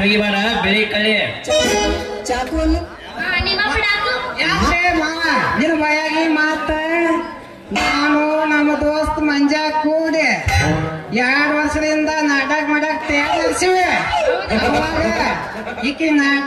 ಹೋಗಿಬಾರ ಬೆಳಿ ಕಳಿ ಚಾಕುವನ್ನು ನಿಮ್ಮ ಬಿಡಾಕು ಯಾಕೆ ಮಾವ ನಿನ್ನ ಬಾಯಾಗಿ ಮಾತ ನಾನು ನಮ್ಮ ದೋಸ್ತ್ ಮಂಜಾ ಕೂಡಿ 2 ವರ್ಷದಿಂದ ನಾಟಕ ಮಾಡಕ್ ತಯಾರಿಸಿವಿ ಅವಾಗ ಈಕಿ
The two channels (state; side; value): identical; both; correlation 1.00